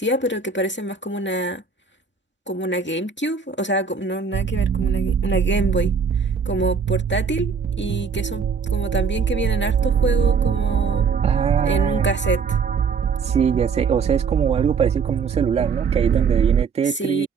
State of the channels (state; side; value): quieter; left; 5.6 dB